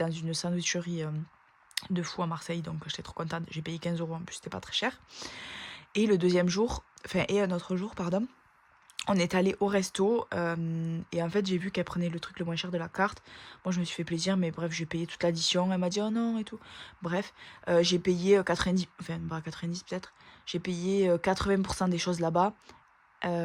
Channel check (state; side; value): identical; both; correlation 1.00